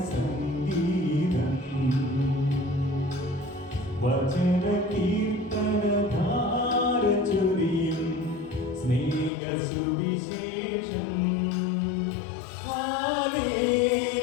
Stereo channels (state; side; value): drops out; right; at 9.3 s